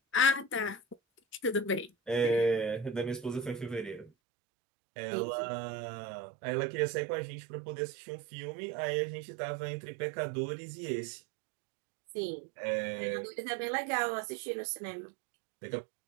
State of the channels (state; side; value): drops out; left; at 4.1 s